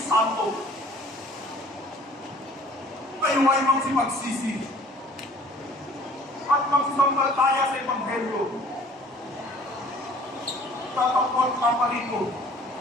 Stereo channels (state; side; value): normal; both; correlation 0.52